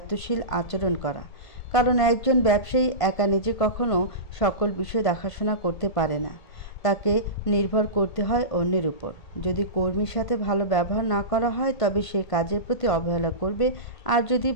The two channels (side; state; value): right; late; 1.5 ms